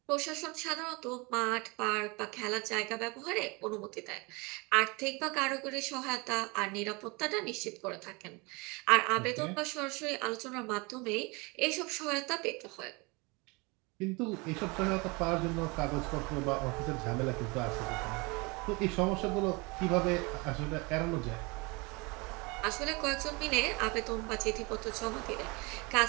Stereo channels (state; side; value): quieter; left; 27.3 dB